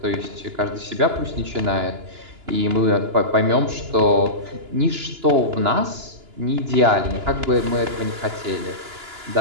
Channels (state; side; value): late; left; 2.9 ms